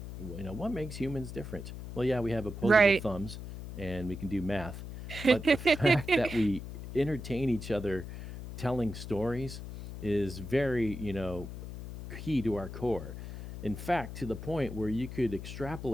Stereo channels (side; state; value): left; noise; hum, 9 dB below the sound